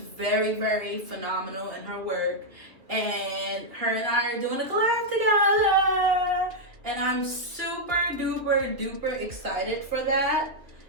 very phenomenal in her work. And her and I are doing a collab together, and I'm super duper excited for that.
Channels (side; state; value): left; late; 2.6 ms